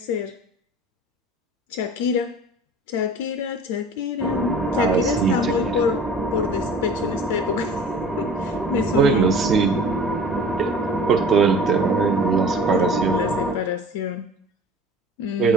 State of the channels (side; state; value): both; normal; correlation 0.44